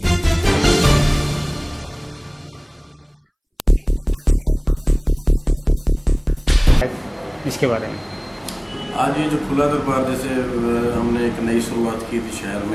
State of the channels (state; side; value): identical; both; correlation 1.00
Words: इसके बारे में। आज ये जो खुला दरबार जैसे हमने एक नई शुरुआत की थी शहर